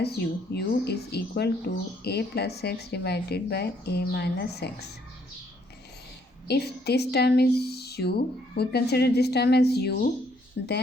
u. U is equal to a plus x divided by a minus x. If this term is u, we consider this term as u,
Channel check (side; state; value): both; normal; correlation 0.68